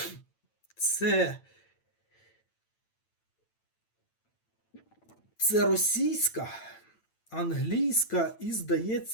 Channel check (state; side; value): late; right; 9.0 ms